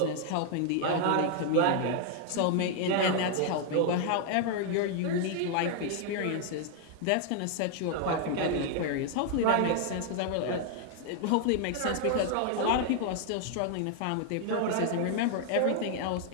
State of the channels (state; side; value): different; both; correlation 0.00